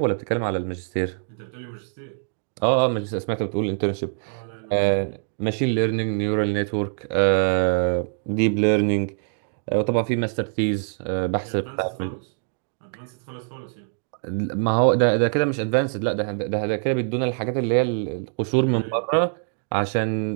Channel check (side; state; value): left; silent; digital silence